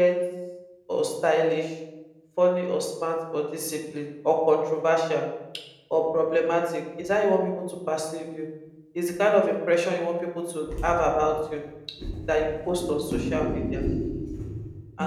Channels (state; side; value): identical; both; correlation 1.00